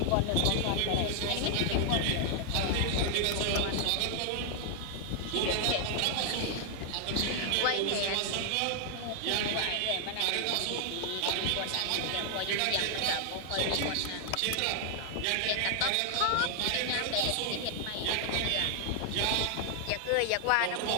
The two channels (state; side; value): different; both; correlation 0.00